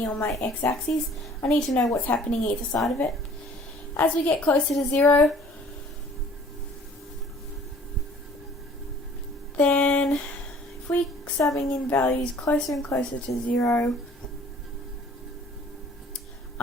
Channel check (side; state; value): both; normal; correlation 0.53